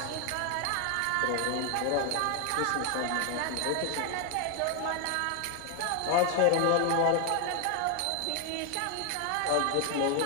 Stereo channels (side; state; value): both; different; correlation 0.01